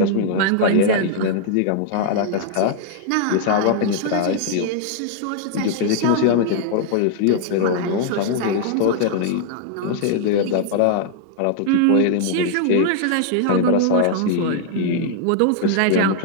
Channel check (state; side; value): different; both; correlation 0.00